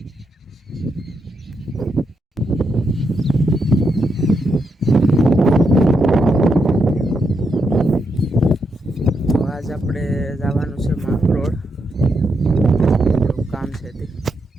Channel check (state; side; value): normal; both; correlation 0.82